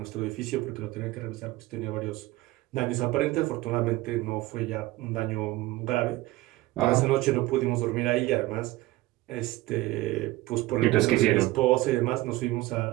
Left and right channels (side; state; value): left; quieter; 18.2 dB